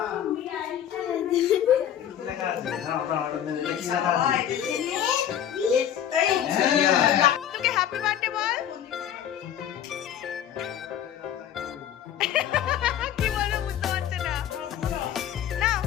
তোকে হ্যাপি বার্থডে বল। কি বলবো বুঝতে পারছে না। না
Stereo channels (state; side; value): quieter; right; 10.2 dB